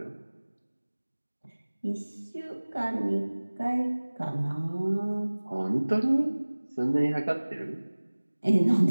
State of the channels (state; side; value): inverted; both; correlation -1.00